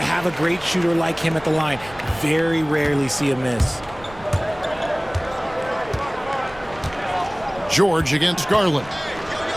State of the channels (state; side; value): noise; right; rumble, 20 dB below the sound